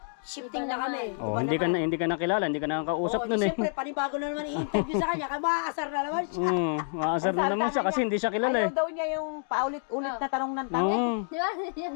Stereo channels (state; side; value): silent; right; digital silence